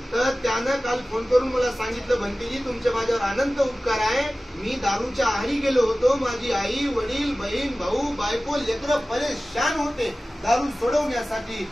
तर त्यानं काल फोन करून मला सांगितलं, भंतेजी तुमचे माझ्यावर अनंत उपकार आहे. मी दारूच्या आहारी गेलो होतो, माझी आई, वडील, बहीण, भाऊ, बायको, लेकरं परेशान होते. दारू सोडवण्यासाठी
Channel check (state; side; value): normal; both; correlation 0.97